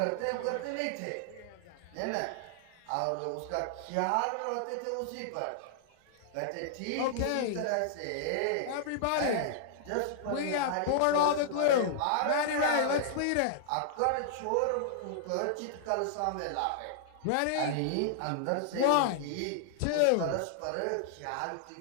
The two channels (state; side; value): different; both; correlation -0.01